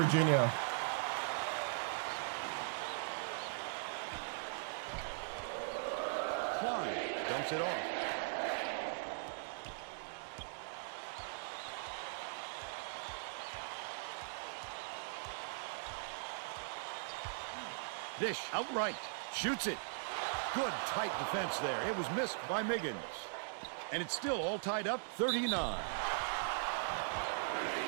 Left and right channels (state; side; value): silent; left; digital silence